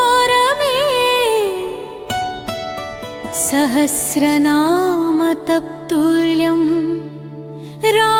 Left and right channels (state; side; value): identical; both; correlation 1.00